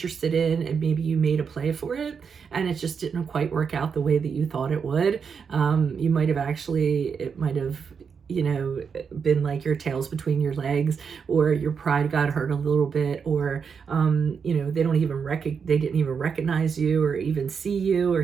in, and maybe you made a play for it and it just didn't quite work out the way that you thought it would. You might have it might have, you know, been like your tails between your legs, or your pride got hurt a little bit, or you know, they didn't even recognize you or even see you or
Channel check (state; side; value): quieter; left; 6.2 dB